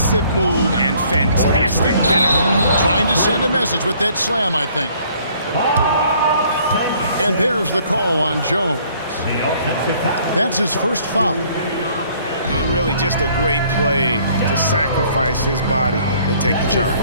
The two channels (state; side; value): inverted; both; correlation -0.60